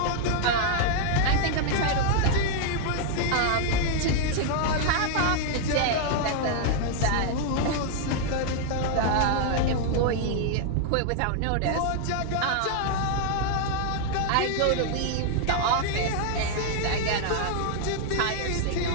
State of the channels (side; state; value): both; different; correlation 0.00